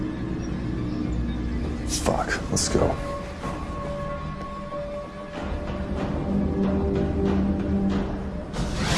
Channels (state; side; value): identical; both; correlation 1.00